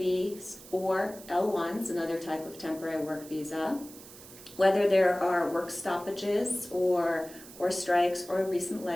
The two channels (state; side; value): noise; right; hiss, 18 dB below the sound